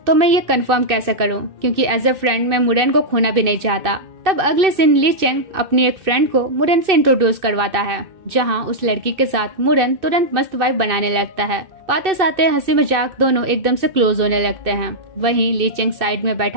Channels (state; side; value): late; left; 2.6 ms